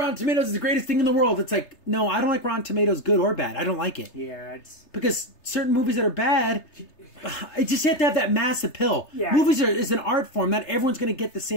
Tomatoes is the greatest thing in the world. It's like, no, I don't like Rotten Tomatoes, good or bad. I don't like it. Yeah, it's... Because certain movies that are bad, I just have to have that mass appeal. Yeah. Movies is an art form. Not everyone's going to get the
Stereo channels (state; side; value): late; right; 3.3 ms